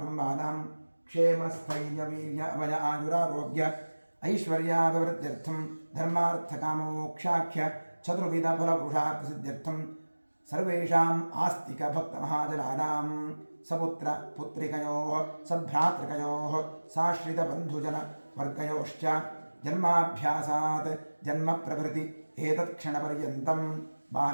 क्षेमस्थैर्यवीर्य अभय आयुरारोग्य ऐश्वर्याभिवृद्ध्यर्थं धर्मार्थकामोक्षाख्य चतुर्विधफलपुरुषार्थसिद्ध्यर्थं सर्वेषाम् आस्तिकभक्तमहाजनानां सपुत्र पुत्रिकयोः सभ्रातृकयोः साश्रितबन्धुजनवर्गयोश्च जन्माभ्यासात् जन्मप्रभृति एतत्क्षणपर्यन्तं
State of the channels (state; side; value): inverted; both; correlation -1.00